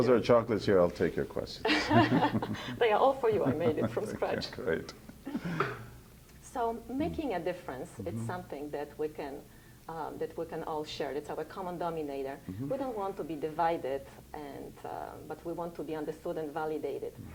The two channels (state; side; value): identical; both; correlation 1.00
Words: there are chocolates here, I'll take your questions. They are all for you. I made it from scratch. Great. So making a difference, it's something that we can all share. It's our common denominator. We don't want to be divided, but we want to be understood and validated.